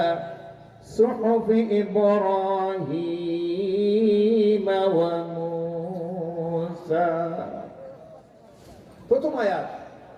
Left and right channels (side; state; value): both; identical; correlation 1.00